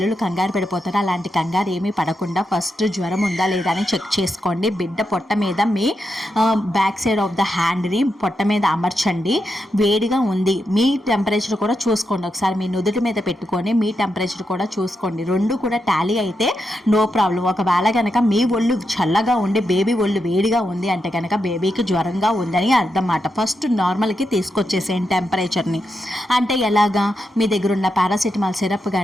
కంగారు పడిపోతారు. అలాంటి కంగారు ఏమీ పడకుండా ఫస్ట్ జ్వరం ఉందా లేదా అని చెక్ చేసుకోండి. బిడ్డ పొట్ట మీద మీ బ్యాక్ సైడ్ ఆఫ్ ద హ్యాండ్ని పొట్ట మీద అమర్చండి. వేడిగా ఉంది, మీ టెంపరేచర్ కూడా చూసుకోండి. ఒకసారి మీ నుదుటి మీద పెట్టుకొని మీ టెంపరేచర్ కూడా చూసుకోండి. రెండు కూడా టాలీ అయితే నో ప్రాబ్లం. ఒకవేళ కనుక మీ ఒళ్ళు చల్లగా ఉండి బేబీ ఒళ్ళు వేడిగా ఉంది అంటే కనుక బేబీకి జ్వరంగా ఉందని అర్థం మాట. ఫస్ట్ నార్మల్కి తీసుకొచ్చేసేయండి టెంపరేచర్ని. అంటే ఎలాగా, మీ దగ్గర ఉన్న పారాసిటమాల్ సిరప్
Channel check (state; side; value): normal; both; correlation 0.85